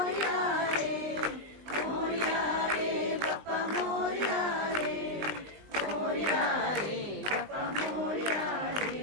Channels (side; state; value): left; late; 20 ms